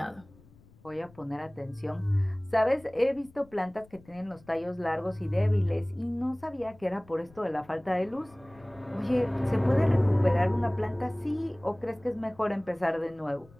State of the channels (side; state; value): left; noise; rumble, 26 dB below the sound